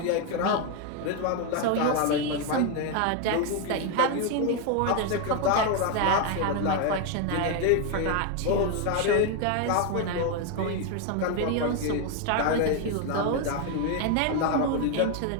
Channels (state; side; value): different; both; correlation 0.01